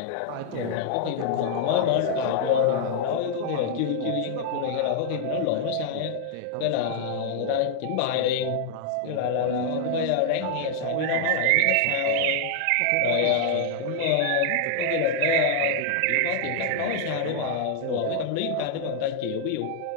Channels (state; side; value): different; both; correlation 0.00